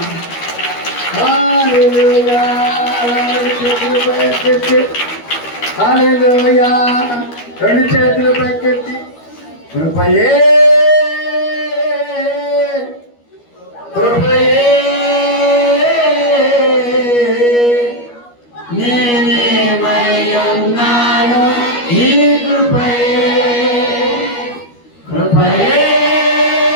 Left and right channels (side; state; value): right; late; 13 ms